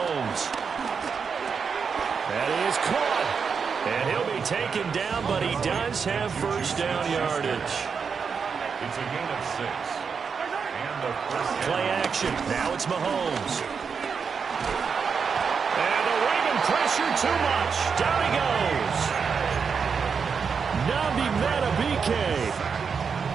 And he is caught. And he'll be taken down, but he does have first down yardage. It's a gain of 6. And the first Play action. Now it's Mahomes. And the Raven pressure too much. Down he goes. Nabi Matabike.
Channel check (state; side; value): quieter; left; 5.9 dB